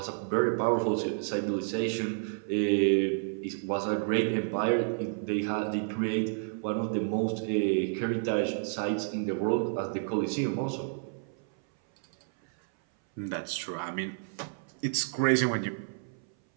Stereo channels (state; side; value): silent; left; 58 dB below the other